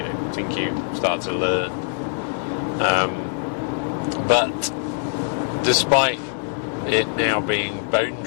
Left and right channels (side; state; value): right; silent; 63 dB below the other